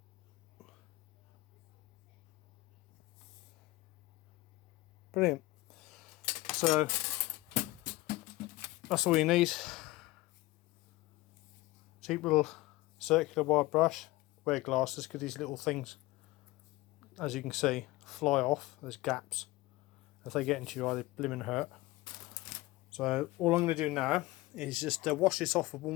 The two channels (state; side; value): quieter; right; 19.6 dB